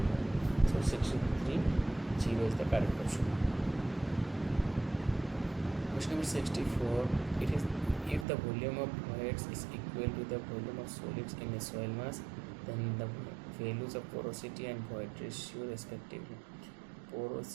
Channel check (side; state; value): left; drops out; at 8.2 s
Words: So 63 0 is the correct option. Question number 64, it is if the volume of fluids is equal to the volume of solids in a soil mass, then the values of porosity and void ratio respectively.